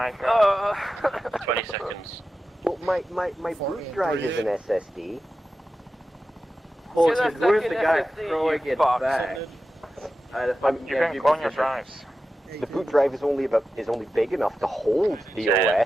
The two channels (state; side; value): normal; both; correlation 0.92